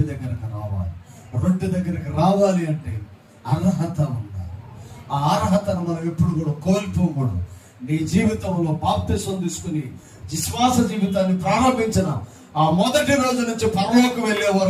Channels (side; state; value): both; identical; correlation 1.00